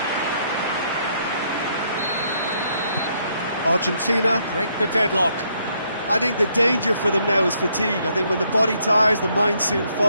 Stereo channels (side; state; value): both; inverted; correlation -0.72